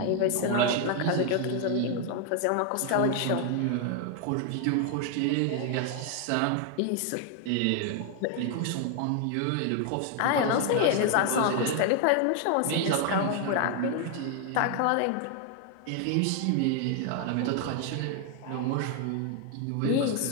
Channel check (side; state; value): both; different; correlation 0.00